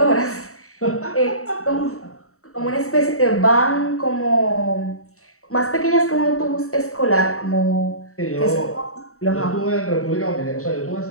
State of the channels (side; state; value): right; late; 0.64 ms